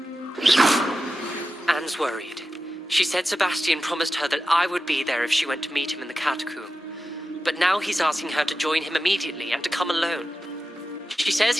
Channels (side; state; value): both; normal; correlation 0.92